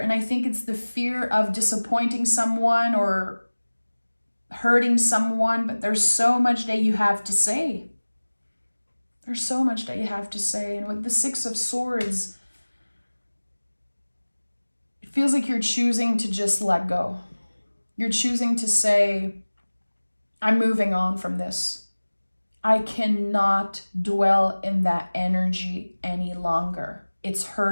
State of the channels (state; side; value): inverted; both; correlation -1.00